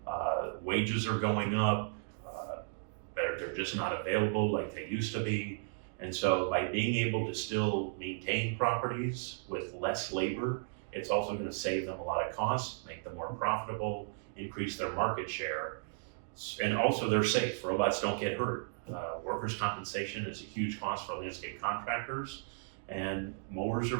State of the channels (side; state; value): left; silent; digital silence